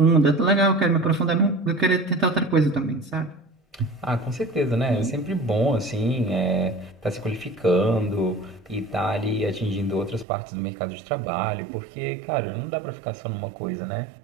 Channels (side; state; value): left; drops out; at 10.2 s